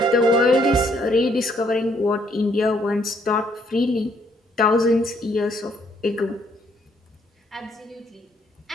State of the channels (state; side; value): normal; both; correlation 0.69